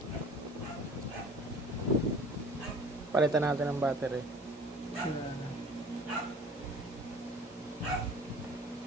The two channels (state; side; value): normal; both; correlation 0.47